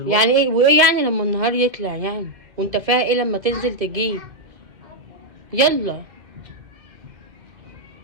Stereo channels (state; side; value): late; left; 1.7 ms